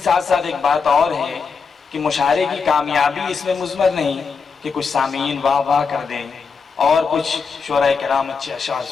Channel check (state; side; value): quieter; right; 5.3 dB